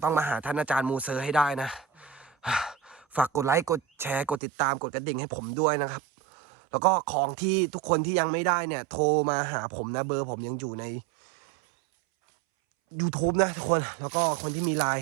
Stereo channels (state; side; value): drops out; left; at 4.4 s